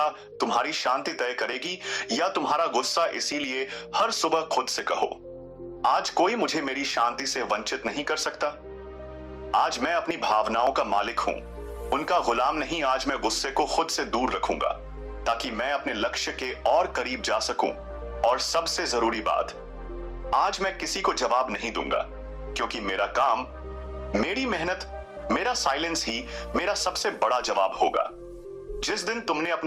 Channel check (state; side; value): identical; both; correlation 1.00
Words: तुम्हारी शांति तय करेगी या तुम्हारा गुस्सा। इसीलिए हर सुबह खुद से कहो, आज कोई मुझे मेरी शांति से वंचित नहीं कर सकता। आज मैं अपनी भावनाओं का मालिक हूं, उनका गुलाम नहीं। आज मैं गुस्से को खुद से दूर रखूंगा ताकि मैं अपने लक्ष्य के और करीब जा सकूं। और सबसे जरूरी बात, आज मैं किसी को जवाब नहीं दूंगा, क्योंकि मेरा काम, मेरी मेहनत, मेरा साइलेंस ही मेरा सबसे बड़ा जवाब होगा। जिस दिन तुमने